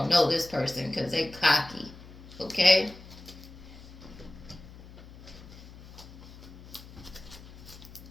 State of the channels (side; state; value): left; noise; hum, 17 dB below the sound